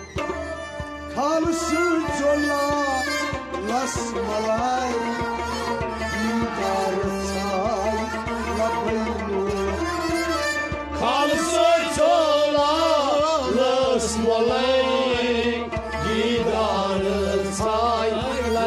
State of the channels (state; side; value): identical; both; correlation 1.00